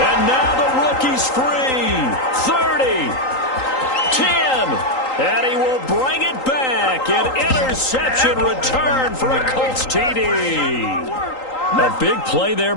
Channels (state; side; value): late; right; 3.8 ms